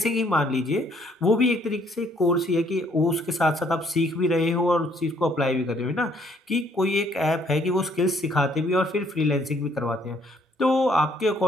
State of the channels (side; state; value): both; normal; correlation 0.65